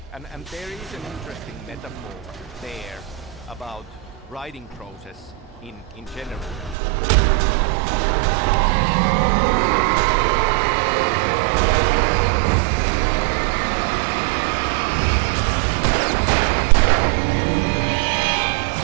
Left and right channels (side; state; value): left; drops out; at 6.8 s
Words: And there is an interesting metaphor there about writing process in general.